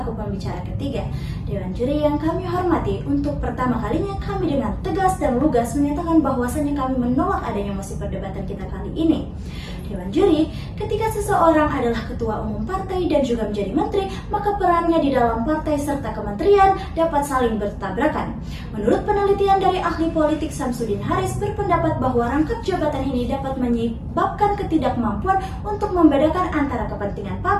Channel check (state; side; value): identical; both; correlation 1.00